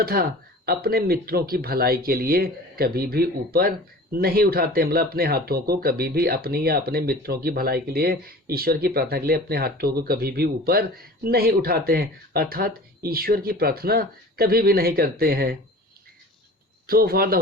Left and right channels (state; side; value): normal; both; correlation 0.41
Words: अपने मित्रों की भलाई के लिए कभी भी ऊपर नहीं उठाते। मतलब अपने हाथों को कभी भी अपनी या अपने मित्रों की भलाई के लिए, ईश्वर की प्रार्थना के लिए अपने हाथों को कभी भी ऊपर नहीं उठाते हैं, अर्थात ईश्वर की प्रार्थना कभी भी नहीं करते हैं। So for the